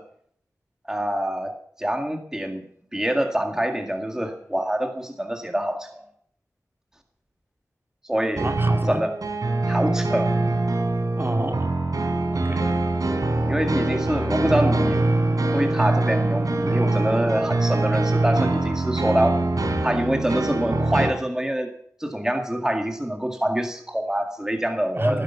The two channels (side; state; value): both; normal; correlation 0.94